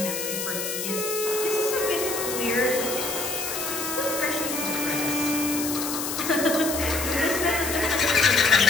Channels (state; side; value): noise; left; hiss, 4 dB below the sound